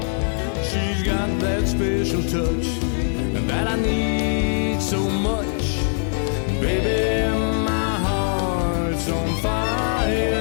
She's got that special touch that I need so much. Baby, my heart's on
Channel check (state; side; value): silent; right; digital silence